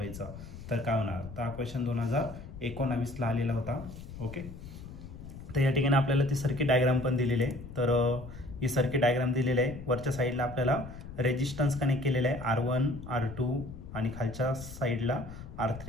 तर काय होणार, तर हा क्वेश्चन 2019ला आलेला होता. ओके, तर या ठिकाणी आपल्याला ती सर्किट डायग्राम पण दिलेली आहे. तर ही सर्किट डायग्राम दिलेली आहे. वरच्या साईडला आपल्याला रेजिस्टन्स कनेक्ट केलेला आहे R1 R2 आणि खालच्या साईडला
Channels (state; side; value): noise; left; rumble, 13 dB below the sound